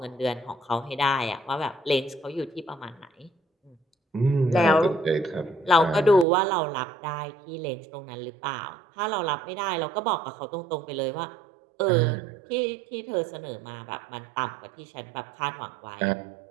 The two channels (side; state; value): left; drops out; at 6.2 s